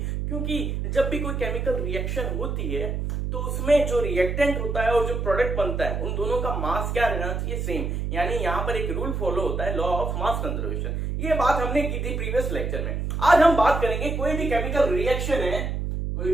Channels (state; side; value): noise; right; hum, 2 dB below the sound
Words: क्योंकि जब भी कोई केमिकल रिएक्शन होती है तो उसमें जो रिएक्टेंट होता है और जो प्रोडक्ट बनता है, उन दोनों का मास क्या रहना चाहिए? सेम। यानी यहाँ पर एक रूल फॉलो होता है, लॉ ऑफ मास कंजर्वेशन। ये बात हमने की थी प्रीवियस लेक्चर में। आज हम बात करेंगे कोई भी केमिकल रिएक्शन है,